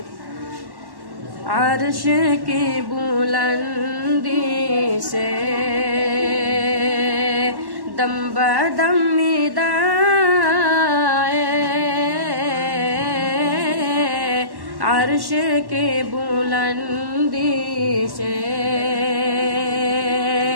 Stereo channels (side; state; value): left; late; 1.1 ms